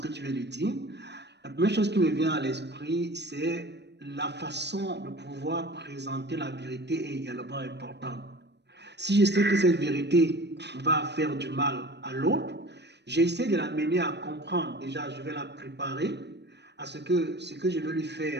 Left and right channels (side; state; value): left; late; 0.50 ms